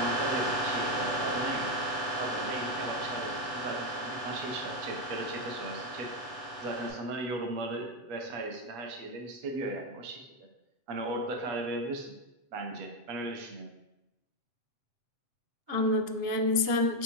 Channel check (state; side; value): late; left; 7.8 ms